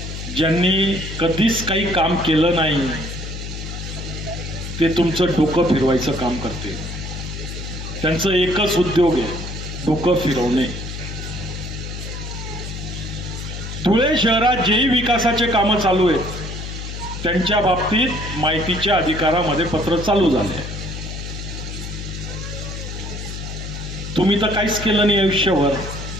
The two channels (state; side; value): noise; left; hum, 7 dB below the sound